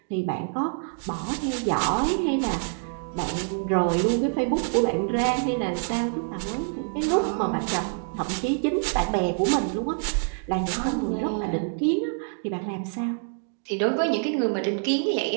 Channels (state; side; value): silent; left; 61 dB below the other